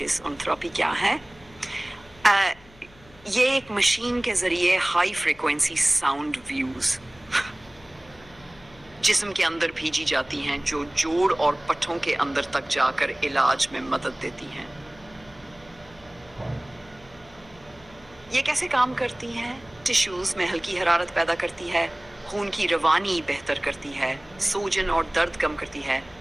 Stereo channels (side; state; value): left; noise; hum, 25 dB below the sound